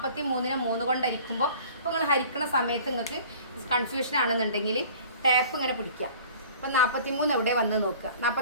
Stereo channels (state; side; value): inverted; both; correlation -0.47